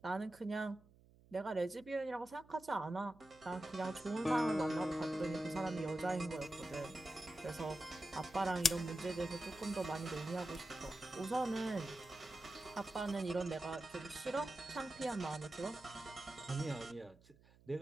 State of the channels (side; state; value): right; noise; hum, 26 dB below the sound